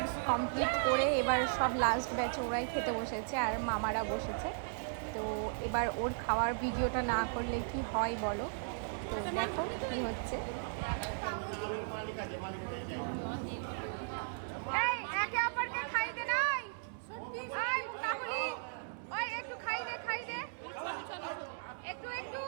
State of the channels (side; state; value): left; silent; digital silence